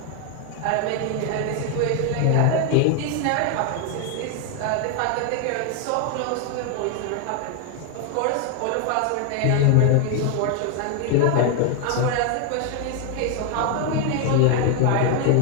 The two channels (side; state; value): both; different; correlation 0.01